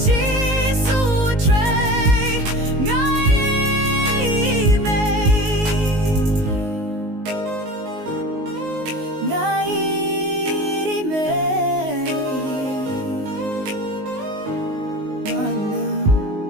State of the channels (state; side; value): late; left; 19 ms